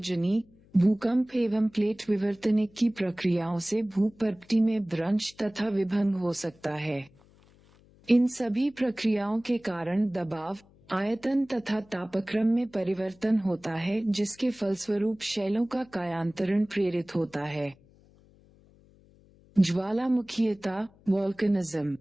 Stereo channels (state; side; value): noise; left; hum, 28 dB below the sound